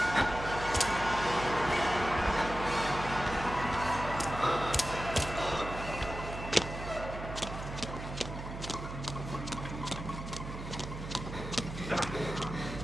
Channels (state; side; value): noise; right; hum, 8 dB below the sound